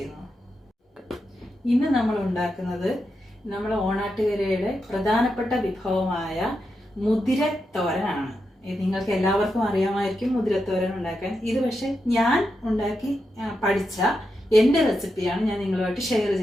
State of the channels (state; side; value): normal; both; correlation 0.86